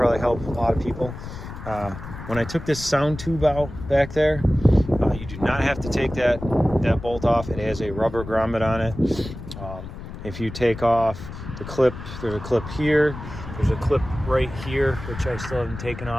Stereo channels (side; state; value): left; noise; rumble, 11 dB below the sound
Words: help a lot of people. When I took this sound tube out back there, you do not have to take that bolt off. It has a rubber grommet on it. If you take off the clip, there's a clip here, there's a clip right here, which I still haven't taken